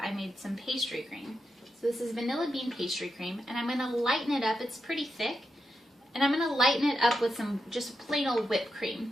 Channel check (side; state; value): both; normal; correlation 0.87